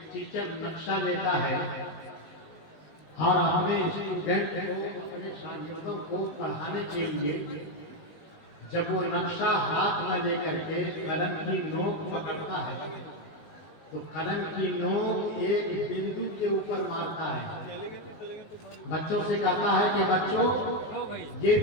टीचर नक्शा लेता है और अपने स्टूडेंट को, अपने शागिर्दों को पढ़ाने के लिए जब वो नक्शा हाथ में लेकर के कलम की नोक पकड़ता है तो कलम की नोक एक बिंदु के ऊपर मारता है। बच्चों से कहता है कि बच्चों ये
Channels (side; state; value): right; late; 19 ms